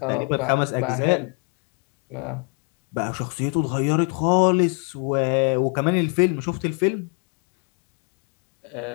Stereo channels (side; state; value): right; quieter; 38.2 dB